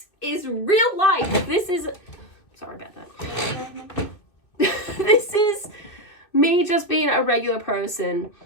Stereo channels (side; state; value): right; late; 2.6 ms